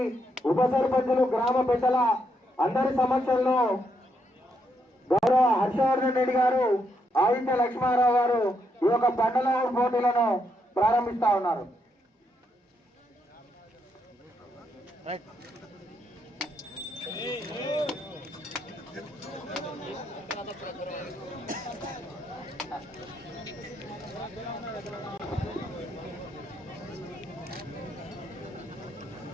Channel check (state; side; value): normal; both; correlation 0.78